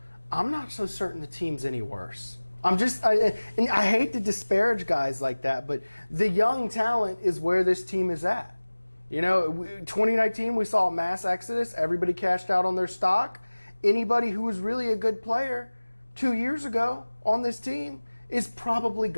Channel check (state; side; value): inverted; both; correlation -1.00